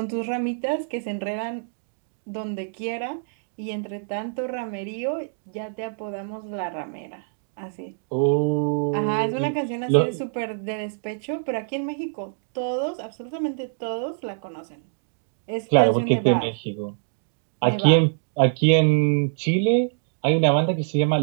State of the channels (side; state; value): left; silent; digital silence